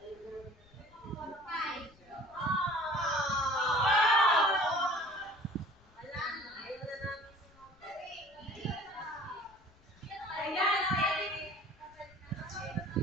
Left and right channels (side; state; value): left; noise; rumble, 28 dB below the sound